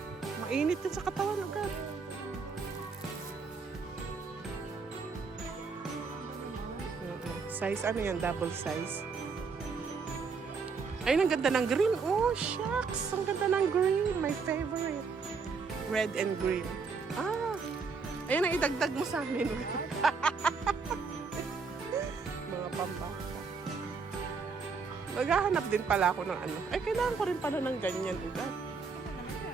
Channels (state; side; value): quieter; left; 5.0 dB